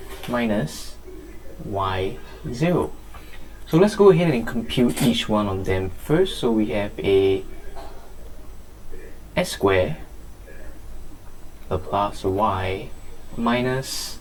minus y0. So let's go ahead and compute each one of them first. So we have a s squared Laplace of y minus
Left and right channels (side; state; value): both; identical; correlation 1.00